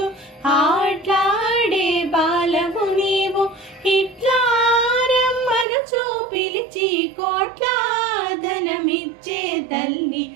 ఆట్లాడే బాలవు నీవు, ఇట్లా రమ్మను చూపిలిచి కోట్ల ధనమిచ్చే తల్లి,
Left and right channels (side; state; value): left; drops out; at 5.7 s